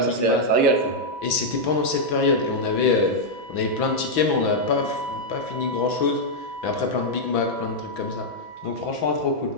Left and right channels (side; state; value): right; late; 6.0 ms